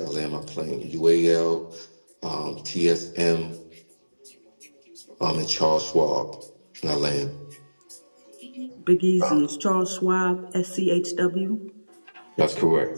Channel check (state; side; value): inverted; both; correlation -1.00